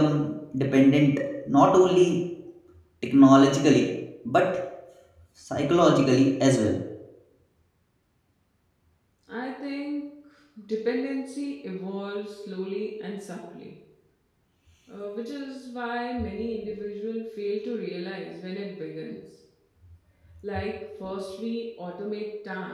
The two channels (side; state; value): both; identical; correlation 1.00